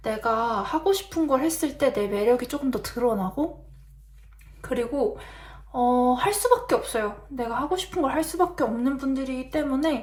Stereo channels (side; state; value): both; identical; correlation 1.00